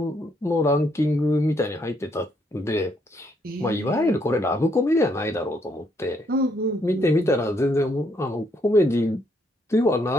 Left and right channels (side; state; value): both; normal; correlation 0.72